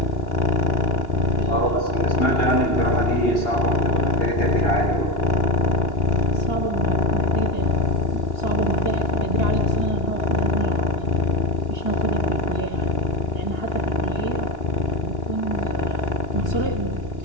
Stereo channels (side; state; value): right; late; 2.9 ms